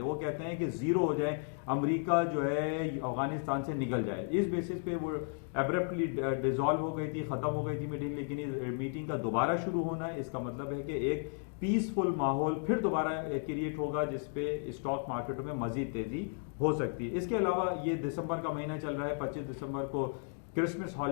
वो कहते हैं कि जीरो हो जाए, अमेरिका जो है अफगानिस्तान से निकल जाए। इस बेसिस पे वो एब्रप्टली डिसॉल्व हो गई थी, खत्म हो गई थी मीटिंग। लेकिन इस मीटिंग का दोबारा शुरू होना है, इसका मतलब है कि एक पीसफुल माहौल फिर दोबारा क्रिएट होगा जिसपे स्टॉक मार्केटों में मजीद तेजी हो सकती है। इसके अलावा ये दिसंबर का महीना चल रहा है, 25 दिसंबर को क्रिसमस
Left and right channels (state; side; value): silent; right; 55 dB below the other